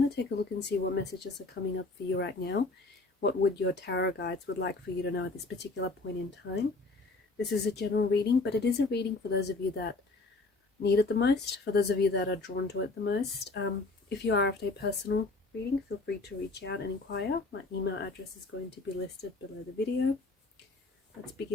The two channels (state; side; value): quieter; right; 3.4 dB